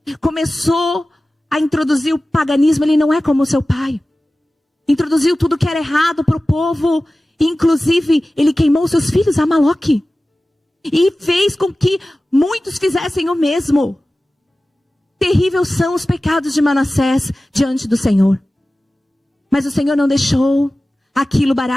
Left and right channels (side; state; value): both; normal; correlation 0.96